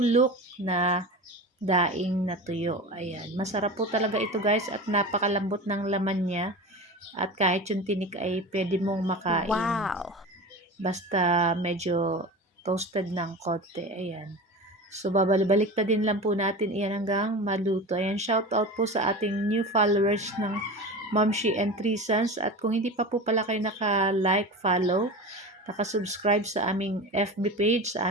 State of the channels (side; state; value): both; normal; correlation 0.30